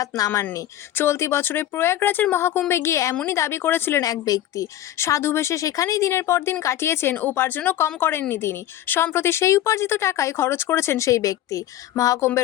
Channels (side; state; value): right; quieter; 12.8 dB